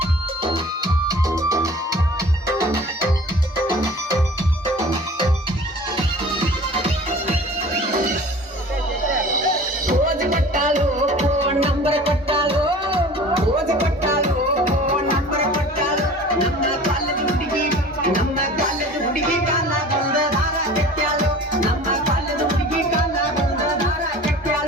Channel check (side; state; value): both; normal; correlation 0.43